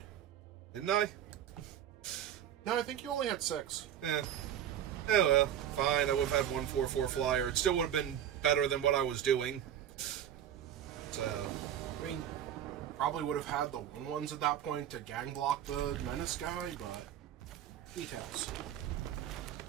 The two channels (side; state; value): left; quieter; 10.4 dB